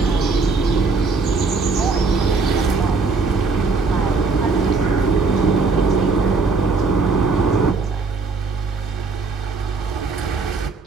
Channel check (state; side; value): quieter; left; 4.3 dB